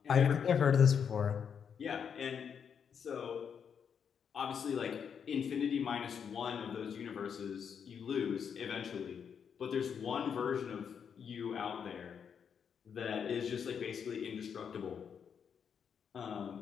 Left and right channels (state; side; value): quieter; right; 7.3 dB